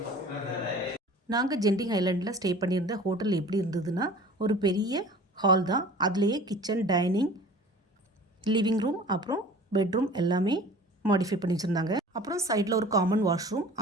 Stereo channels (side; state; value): both; normal; correlation 0.44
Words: நாங்கள் ஜெண்டிங் ஐலாண்டில் ஸ்டே பண்ணியிருந்த ஹோட்டல் எப்படி இருந்ததுன்னா, ஒரு பெரிய ஹால் தான். அதுலேயே கிச்சன், டைனிங், லிவிங் ரூம், அப்புறம் பெட்ரூம் எல்லாமே மாடிஃபை பண்ணி வச்சுருந்தாங்க. அப்புறம் சைடில் ஒரு காமன் வாஷ்ரூம்,